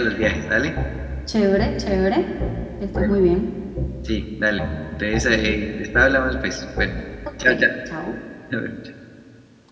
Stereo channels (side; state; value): both; identical; correlation 1.00